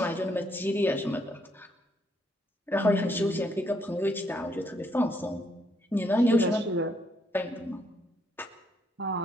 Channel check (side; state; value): both; normal; correlation 0.73